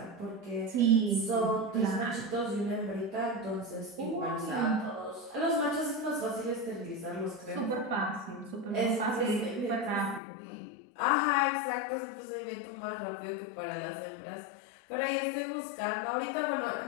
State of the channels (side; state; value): right; drops out; at 10.2 s